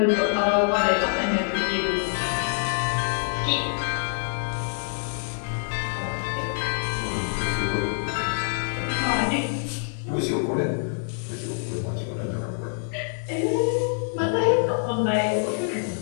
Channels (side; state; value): right; silent; 61 dB below the other